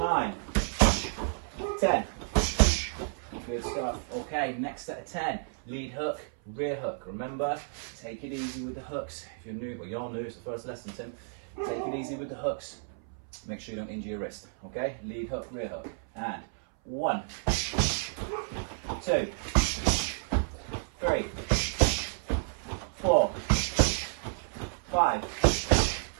10. Good stuff. Okay, next set of 10. Lead hook, rear hook. Remember, take it easy with the hooks. If you're new, well, you're new, it's the first lesson, Tim. Take it easy with the hooks. Make sure you don't injure your wrist. Okay, lead hook, rear hook. And 1, 2, 3, 4, 5,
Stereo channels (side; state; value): left; silent; 57 dB below the other